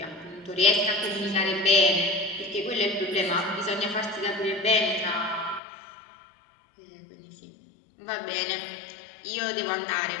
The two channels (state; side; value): drops out; right; at 5.6 s